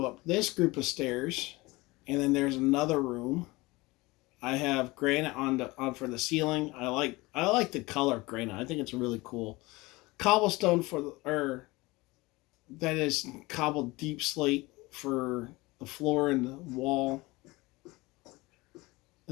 up this group of stairs, and then there's another room. I have granite on for the ceiling. I like the color of granite. I think it's really cool. Cobblestone or that is cobbled deep slate for the floor and the wall.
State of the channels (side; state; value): right; quieter; 22.0 dB